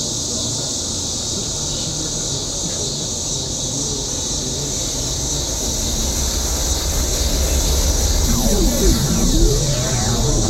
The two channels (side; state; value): both; identical; correlation 1.00